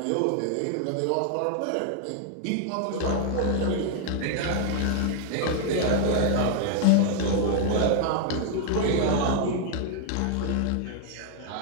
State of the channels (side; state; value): both; different; correlation -0.01